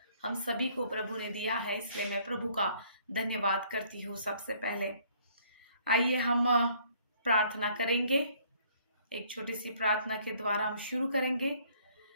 हम सभी को प्रभु ने दिया है। इसलिए मैं प्रभु का धन्यवाद करती हूँ। सबसे पहले आइए हम प्रार्थना करेंगे। एक छोटी सी प्रार्थना के द्वारा हम शुरू करेंगे।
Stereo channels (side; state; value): both; inverted; correlation -0.61